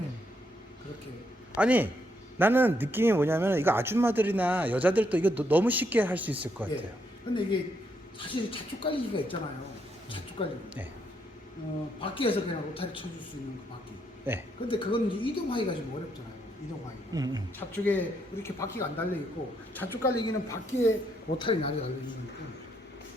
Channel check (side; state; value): both; normal; correlation 0.76